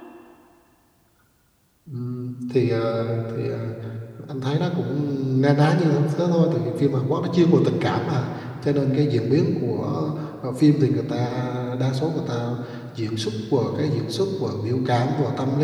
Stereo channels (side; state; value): both; identical; correlation 1.00